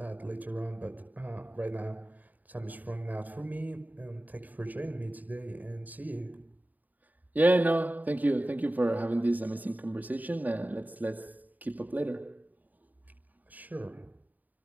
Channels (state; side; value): late; left; 0.081 ms